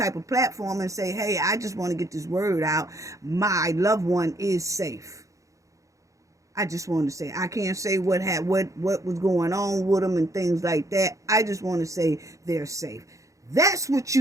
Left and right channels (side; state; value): left; late; 0.15 ms